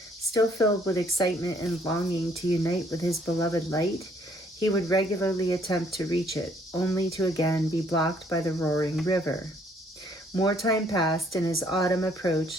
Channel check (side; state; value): both; normal; correlation 0.64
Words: filled with excitement and longing to unite with his beloved light, he would regularly attempt to reach it, only to again be blocked by the roaring river. More time passed, and as autumn